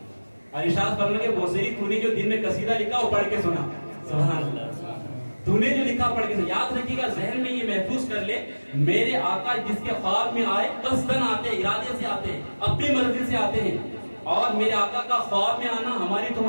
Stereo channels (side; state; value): both; inverted; correlation -1.00